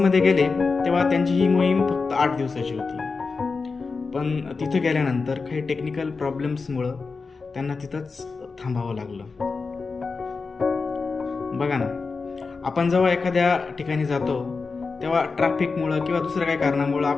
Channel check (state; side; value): quieter; right; 4.5 dB